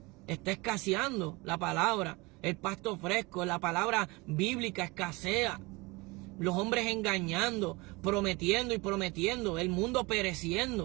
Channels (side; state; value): left; quieter; 24.6 dB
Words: Está escaseando la palabra, el pasto fresco, la palabra bíblica escasea. Los hombres engañando, prometiendo y prometiendo, el mundo